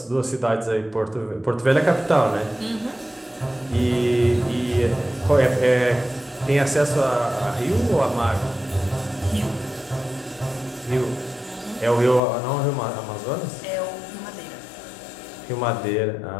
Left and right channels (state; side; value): drops out; right; at 12.2 s